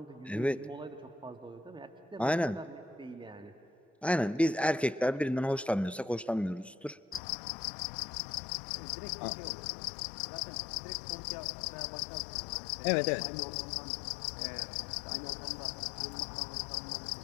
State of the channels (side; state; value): right; drops out; at 7.2 s